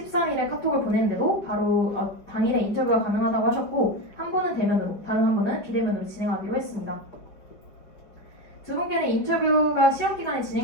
카톡을 보냈는데도 바로 당일에 인터뷰가 가능하다고 하셨고 한 분은 대면으로, 다른 한 분은 비대면으로 진행하기로 했습니다. 두 분께는 인터뷰가 시험 기간에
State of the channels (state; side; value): late; right; 5.5 ms